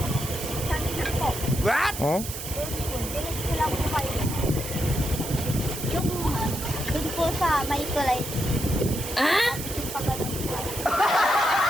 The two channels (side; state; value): right; noise; hiss, 8 dB below the sound